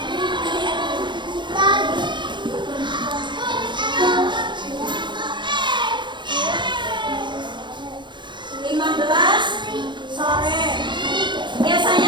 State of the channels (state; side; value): late; left; 0.23 ms